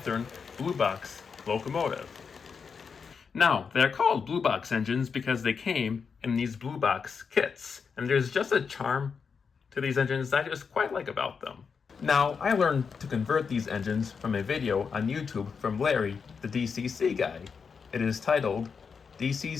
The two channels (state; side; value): quieter; right; 5.8 dB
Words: Blue Box locomotive. Now, they're called Blue Box engines because they came in these Blue Box kits, and there's just a charm to these engines that I just quite like about them. Now, I learned to convert these engines from a video on YouTube from Larry, the DCC guy. It is titled